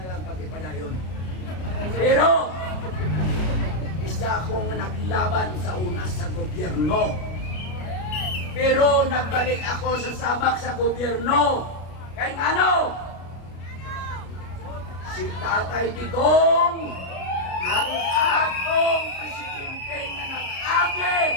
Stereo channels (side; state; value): right; late; 33 ms